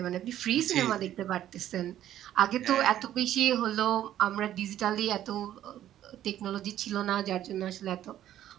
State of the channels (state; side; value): quieter; left; 12.0 dB